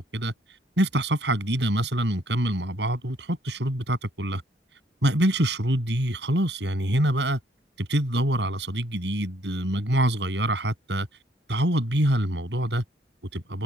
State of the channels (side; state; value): both; normal; correlation 0.67